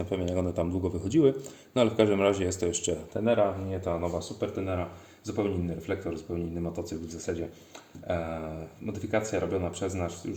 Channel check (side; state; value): both; identical; correlation 1.00